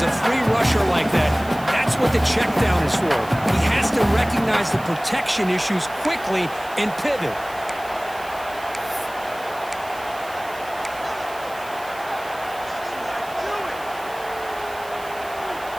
a free rusher like that, that's what the check down is for. He has to recognize the protection issues quickly and pivot.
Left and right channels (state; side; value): noise; right; hiss, 19 dB below the sound